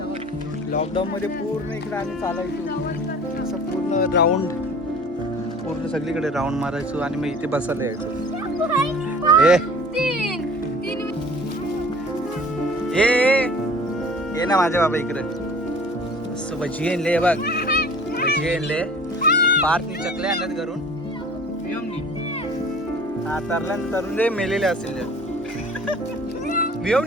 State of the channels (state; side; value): normal; both; correlation 0.46